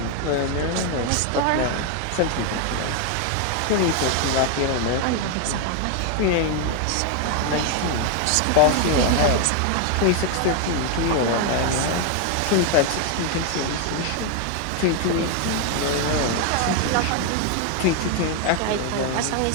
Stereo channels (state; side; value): different; both; correlation 0.01